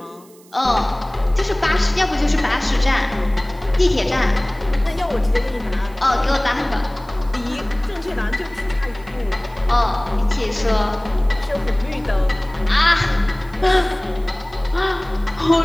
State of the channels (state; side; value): noise; right; hiss, 27 dB below the sound